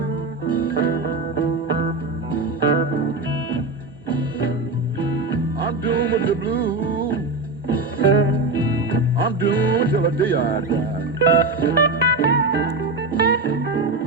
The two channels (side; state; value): left; quieter; 3.2 dB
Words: I'm doomed with the blues. I'm doomed till the day I die.